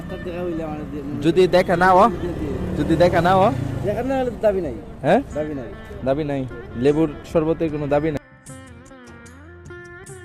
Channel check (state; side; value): identical; both; correlation 1.00